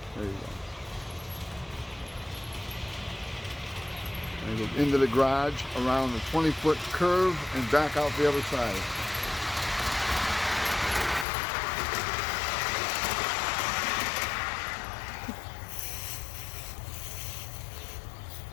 There you go. And it goes into the garage around the 20-foot curve and back out the other side.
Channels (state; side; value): drops out; right; at 11.2 s